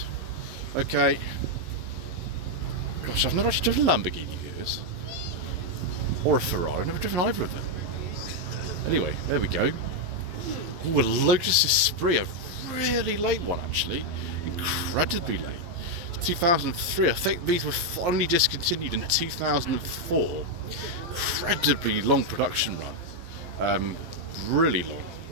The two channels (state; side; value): late; left; 11 ms